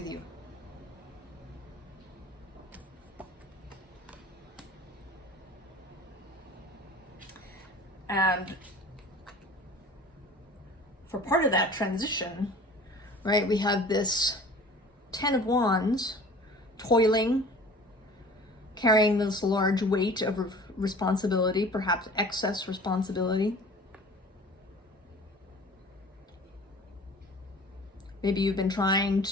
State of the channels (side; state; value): both; normal; correlation 0.44